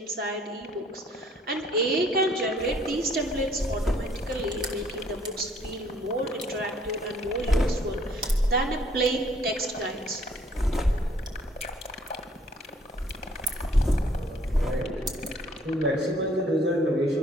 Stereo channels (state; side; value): normal; both; correlation 0.61